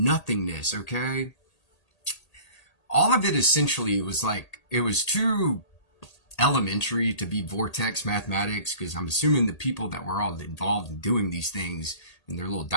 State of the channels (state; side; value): late; right; 1.8 ms